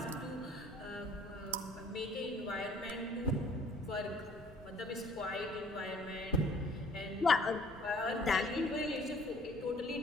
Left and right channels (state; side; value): normal; both; correlation 0.56